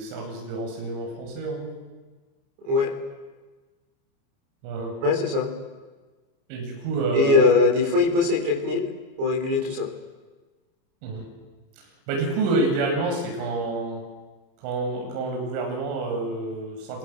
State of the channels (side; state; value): left; late; 29 ms